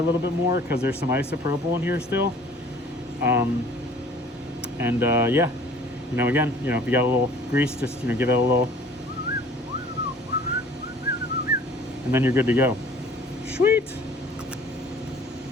little bit more because there's some isopropyl in here still. Yeah, you know, again, you know, if you got a little grease, just, you know, give it a little, and then you're good to go. Sweet.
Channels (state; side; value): normal; both; correlation 0.50